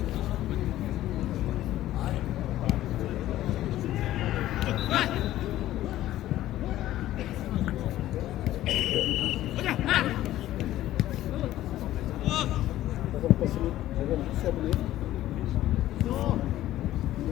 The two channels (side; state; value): right; quieter; 14.2 dB